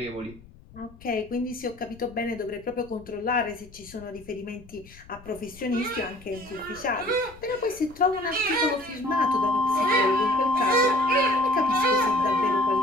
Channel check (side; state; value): left; noise; rumble, 22 dB below the sound